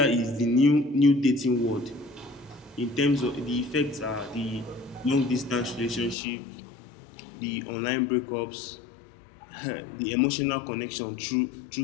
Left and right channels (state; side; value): drops out; right; at 6.2 s